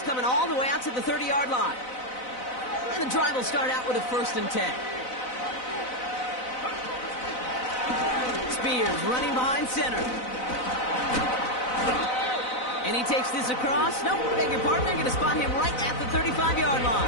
coming all the way out to the 30-yard line. And the drive will start out with a 1st and 10. Spears running behind center. And he takes this across. Nope, beg your pardon. They're going to spot him right at the 35-yard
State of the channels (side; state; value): right; late; 4.0 ms